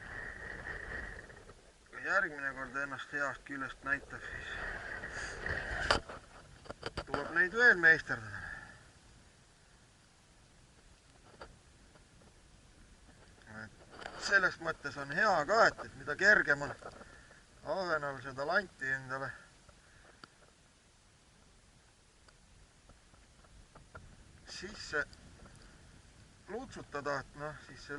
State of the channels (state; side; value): identical; both; correlation 1.00